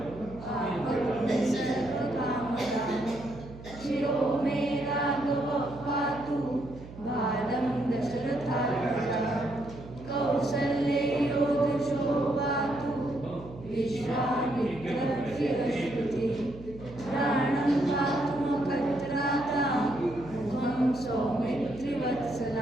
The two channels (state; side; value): noise; right; hum, 15 dB below the sound